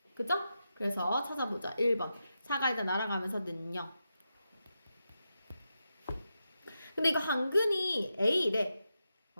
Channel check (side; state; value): both; inverted; correlation -0.88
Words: 그죠? 그래서 찾아보자. 1번. 4가 일단 날아가면서 는요. 근데 이거 한근이 A래.